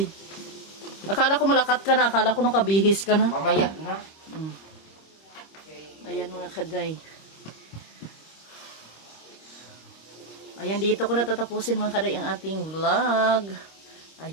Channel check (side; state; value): right; late; 26 ms